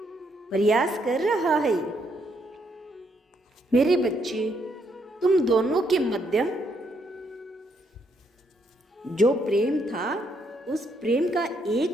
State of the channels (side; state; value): both; normal; correlation 0.74